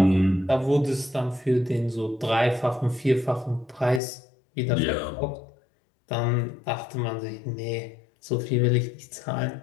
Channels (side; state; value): right; drops out; at 4.0 s